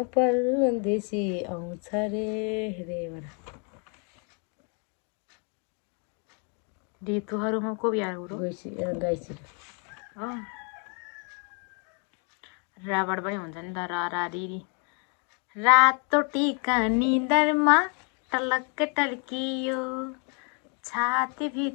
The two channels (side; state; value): right; quieter; 38.0 dB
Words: परदेशी आउँछ रे रेबाट ऋतुहरूमा को बिहा हो गाइसी राबाट पनि हुन्छ नि त रा रिरी रातो टिका निदरमा टलक्क टल्कियो